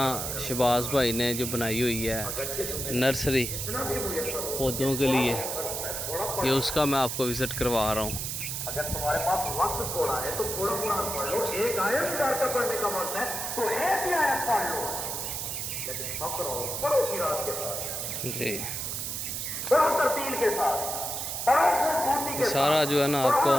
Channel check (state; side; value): noise; right; hiss, 3 dB below the sound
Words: شہباز بھائی نے جو بنائی ہوئی ہے نرسری پودوں کے لیے، یہ اس کا میں آپ کو وزٹ کروا رہا ہوں۔ اگر تمہارے پاس وقت تھوڑا ہے تو تھوڑا قرآن پڑھ لو، ایک آیت چار کا پڑھنے کا وقت ہے تو ایک ہی آیت پڑھ لو، لیکن فخر ہو پڑھو کی رات کے ساتھ، جی پڑھو ترتیل کے ساتھ، یہ سارا جو ہے نا آپ کو